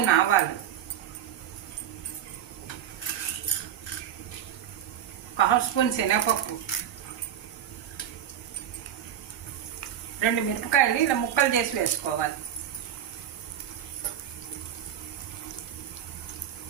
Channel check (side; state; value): left; quieter; 9.9 dB